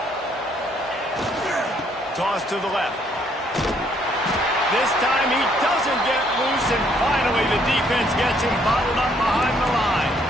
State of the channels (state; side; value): normal; both; correlation 0.67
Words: Toss to the left. This time he doesn't get loose, and finally the defense gets him bottled up behind the line.